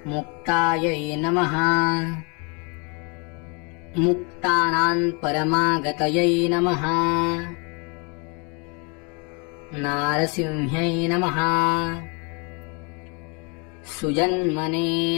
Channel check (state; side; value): quieter; right; 33.2 dB